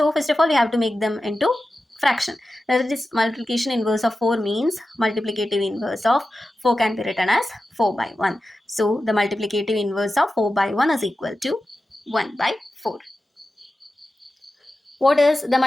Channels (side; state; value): both; normal; correlation 0.93